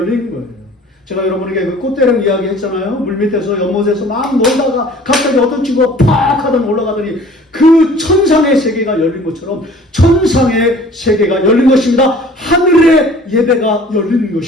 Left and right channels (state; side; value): normal; both; correlation 0.49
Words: 거예요. 제가 여러분에게 그 꽃대령 이야기 했잖아요. 물밑에서 연못에서 막 놀다가 갑자기 어떤 친구가 팍 하더니 올라가더니 그 천상의 세계가 열린 것처럼 천상의 세계가 열린 것입니다. 하늘의 예배가 열린